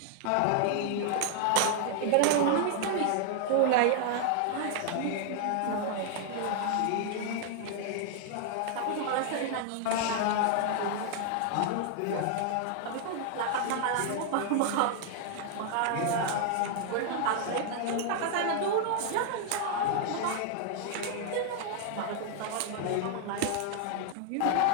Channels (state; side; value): different; both; correlation 0.00